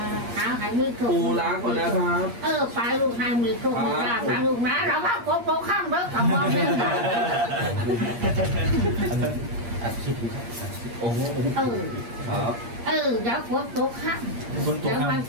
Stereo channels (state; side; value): late; left; 8.5 ms